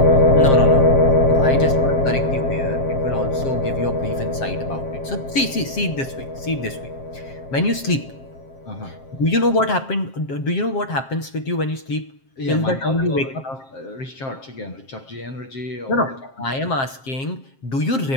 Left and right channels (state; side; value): late; right; 7.5 ms